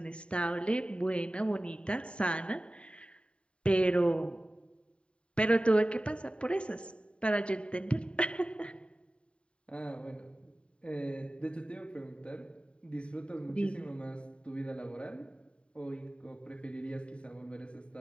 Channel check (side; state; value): right; late; 0.056 ms